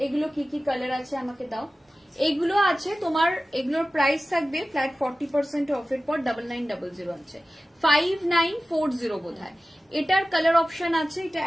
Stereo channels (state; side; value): normal; both; correlation 0.96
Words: এগুলো কি কি কালার আছে আমাকে দাও। এগুলো আছে তোমার, এগুলোর প্রাইস থাকবে ফ্ল্যাট 40% অফের পর 9900 আছে, 5940 বোধ হয়। এটার কালার অপশন আছে, এটা